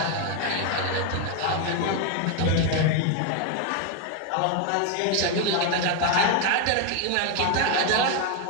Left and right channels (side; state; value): both; different; correlation 0.01